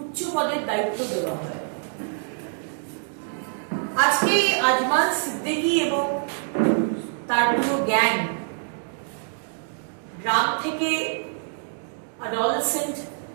উচ্চ পদের দায়িত্ব দেওয়া হয়। আজকে আজমাল সিদ্দিকী এবং তার পুরো গ্যাং গ্রাম থেকে অ্যাডোলেসেন্ট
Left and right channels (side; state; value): left; silent; 61 dB below the other